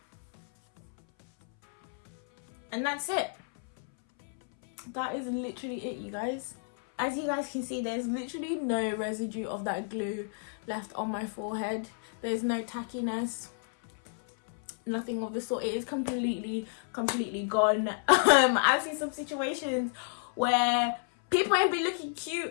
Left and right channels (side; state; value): right; silent; 57 dB below the other